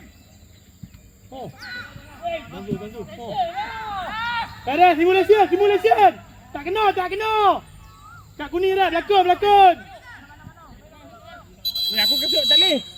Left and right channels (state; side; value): identical; both; correlation 1.00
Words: Bantu. Oh. Tak ada simulasi. Tak kena. Kat kuning dah berlakon. Ni aku kesut tak boleh.